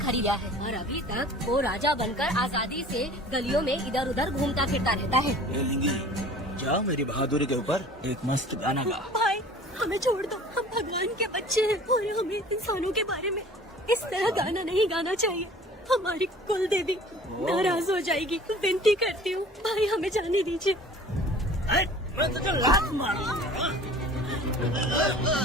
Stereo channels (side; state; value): both; normal; correlation 0.46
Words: है और अभी तक वो राजा बनकर आजादी से गलियों में इधर उधर घूमता फिरता रहता है। जाओ मेरी बहादुरी के ऊपर एक मस्त गाना गा। भाई हमें छोड़ दो, हम भगवान के बच्चे हैं और हमें इंसानों के बारे में इस तरह गाना नहीं गाना चाहिए। हमारी कुल देवी नाराज हो जाएगी। विनती करती हूँ भाई, हमें जाने दीजिए। मैं तुझे लात मारूंगा।